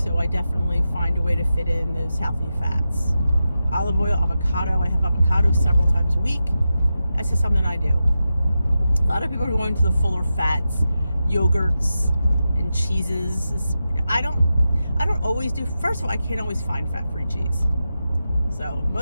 I definitely find a way to fit in those healthy fats. Olive oil, avocado. I have avocado several times a week. That's just something I do. A lot of people are going to the fuller fats, yogurts, and cheeses. I don't always do. First of all, I can't always find fat-free cheese. So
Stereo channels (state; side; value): inverted; both; correlation -0.90